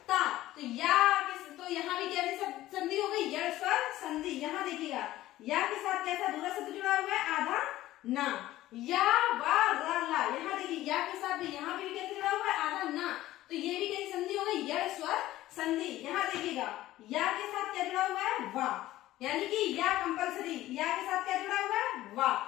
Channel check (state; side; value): quieter; right; 15.4 dB